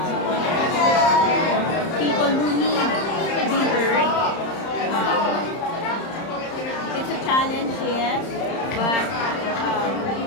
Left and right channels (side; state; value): right; late; 31 ms